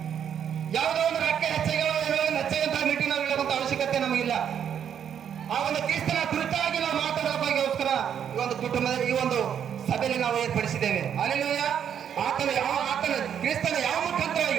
ಯಾವುದೋ ಒಂದು ರೊಕ್ಕ ಹೆಚ್ಚಾಗಿ ಹೆಚ್ಚಾಗಂತ ಮೀಟಿಂಗ್ ನಾವು ಹೇಳುವಂತ ಅವಶ್ಯಕತೆ ನಮಗಿಲ್ಲ. ಆ ಒಂದು ಕ್ರಿಸ್ತನ ಕುರಿತಾಗಿ ನಾವು ಮಾತಾಡೋದಕ್ಕೋಸ್ಕರ ಈ ಒಂದು ಕುಟುಂಬದ ಈ ಒಂದು ಸಭೆಯಲ್ಲಿ ನಾವು ಏರ್ಪಡಿಸಿದ್ದೇವೆ. ಹಲ್ಲೆಲೂಯಾ. ಆತನ ಕ್ರಿಸ್ತನ ಯಾವ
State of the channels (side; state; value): left; quieter; 8.6 dB